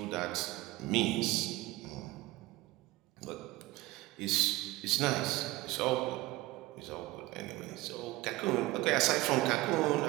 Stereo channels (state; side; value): quieter; left; 18.7 dB